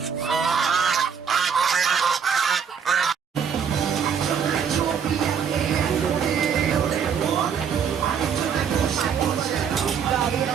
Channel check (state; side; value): quieter; left; 7.1 dB